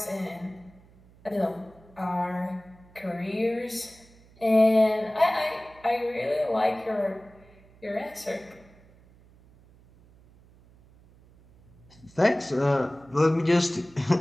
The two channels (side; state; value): right; noise; hum, 27 dB below the sound